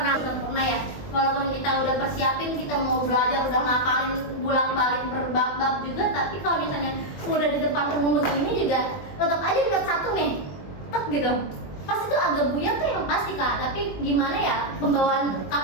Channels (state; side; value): late; right; 21 ms